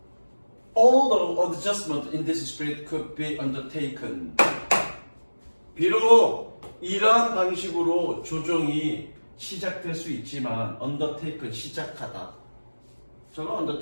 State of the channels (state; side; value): inverted; both; correlation -1.00